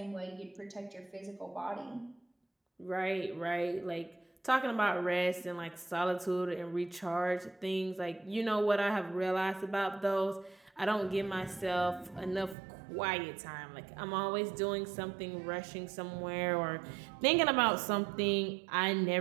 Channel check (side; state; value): left; drops out; at 12.6 s